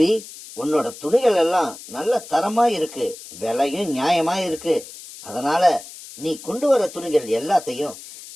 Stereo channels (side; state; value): left; noise; hiss, 16 dB below the sound